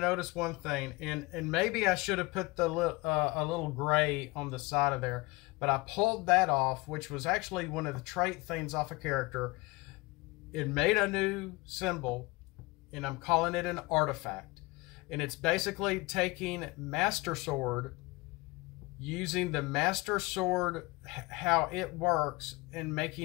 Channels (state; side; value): quieter; right; 24.0 dB